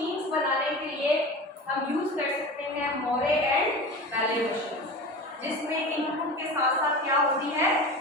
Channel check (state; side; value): normal; both; correlation 0.32